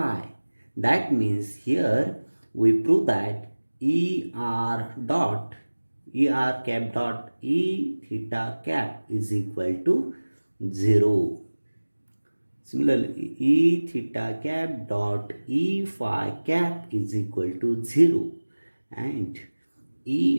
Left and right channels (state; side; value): inverted; both; correlation -1.00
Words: That means here we prove that er cap dot e theta cap is equal to 0. Similarly, e theta cap dot e phi cap is equal to 0, and